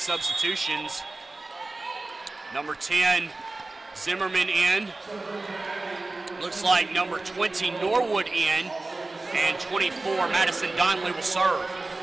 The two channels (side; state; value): left; quieter; 3.2 dB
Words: Number 10, Zimmerman in. Looks like number 20, Norwood in. And 24, Madison Donnelly will serve.